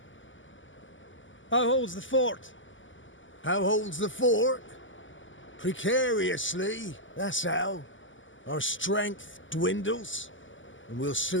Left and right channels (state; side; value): late; right; 0.56 ms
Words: How holds the fort? How holds the fort? Precariously, that's how. Our strength dwindles, and we'll